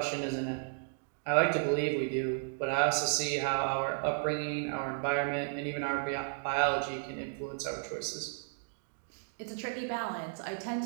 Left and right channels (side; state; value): left; silent; digital silence